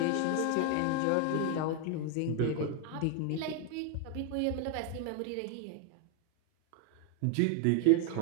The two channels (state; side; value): different; both; correlation 0.00